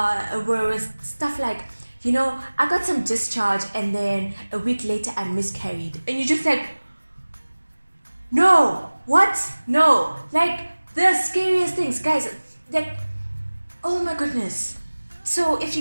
stuff like, I got some discharge, and then a week later I miscarried. And you're just like, no, what? No. Like, the scariest things, guys, like, oh my goodness. So if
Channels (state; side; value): inverted; both; correlation -1.00